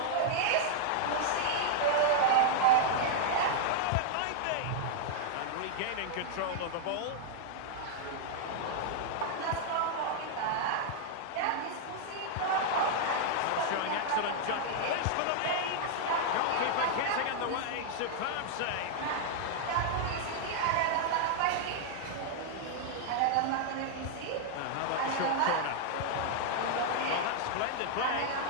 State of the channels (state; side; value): different; both; correlation -0.01